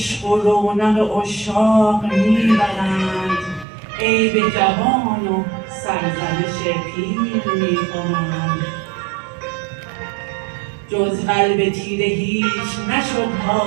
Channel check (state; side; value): drops out; left; at 3.7 s